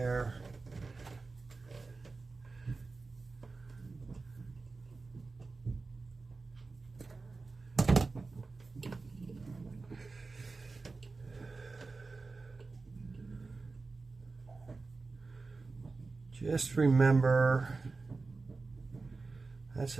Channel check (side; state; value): left; quieter; 3.9 dB